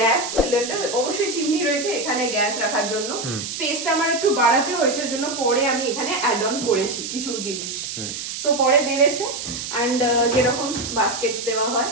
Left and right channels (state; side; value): noise; right; hiss, 6 dB below the sound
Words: সিলিন্ডার, অবশ্যই চিমনি রয়েছে এখানে গ্যাস রাখার জন্য। স্পেসটা আমার একটু বাড়াতে হয়েছে, জন্য পরে আমি এখানে অ্যাড অন করেছি কিছু জিনিস, সো পরে বেড়েছে। অ্যান্ড যেরকম বাস্কেটস দেওয়া হয়